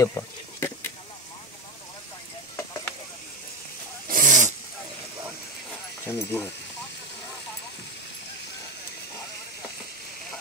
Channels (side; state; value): both; normal; correlation 0.16